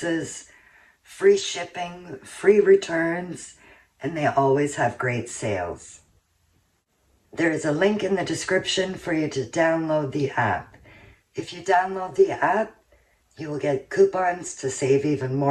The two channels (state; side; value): identical; both; correlation 1.00